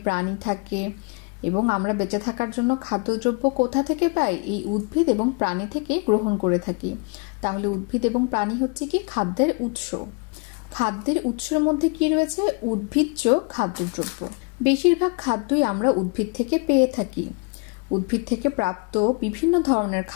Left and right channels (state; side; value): quieter; right; 31.8 dB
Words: প্রাণী থাকে, এবং আমরা বেঁচে থাকার জন্য খাদ্যদ্রব্য কোথা থেকে পাই? এই উদ্ভিদ এবং প্রাণী থেকে গ্রহণ করে থাকি। তাহলে উদ্ভিদ এবং প্রাণী হচ্ছে কি খাদ্যের উৎস। খাদ্যের উৎসের মধ্যে কি রয়েছে? উদ্ভিজ্জ খাদ্যদ্রব্য। বেশিরভাগ খাদ্যই আমরা উদ্ভিদ থেকে পেয়ে থাকি। উদ্ভিদ থেকে প্রাপ্ত বিভিন্ন ধরনের